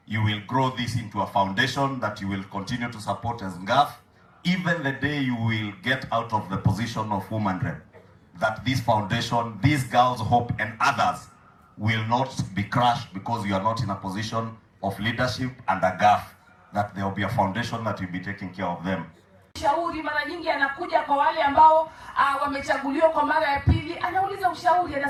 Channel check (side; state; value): both; identical; correlation 1.00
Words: you will grow this into a foundation that you will continue to support as NGAF, even the day you will get out of the position of woman rep. That this foundation, these girls' hope and others will not be crushed because you are not in a position of leadership and a GAF, that there will be a foundation that will be taking care of them. Ushauri mara nyingi anakuja kwa wale ambao wamechaguliwa kwa mara ya pili, anauliza ushauri,